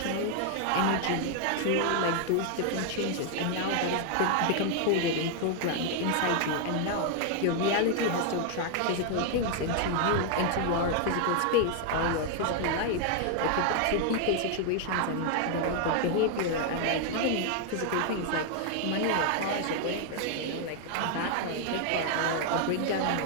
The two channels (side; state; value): both; different; correlation 0.00